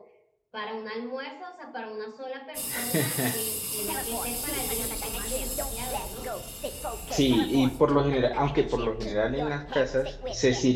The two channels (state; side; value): identical; both; correlation 1.00